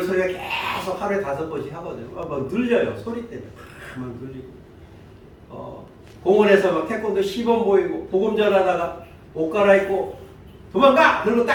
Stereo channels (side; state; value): both; identical; correlation 1.00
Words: 소리가 계속 하루에 5번씩 하거든요. 막 눌려요. 소리 때문에 막 눌리고 공원에서 막 태권도 시범 보이고 복음 전하다가 옷 갈아입고 도망가! 그러고